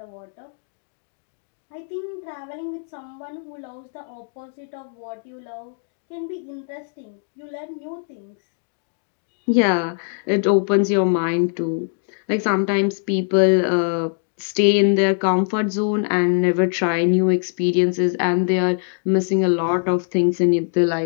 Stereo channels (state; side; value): silent; right; digital silence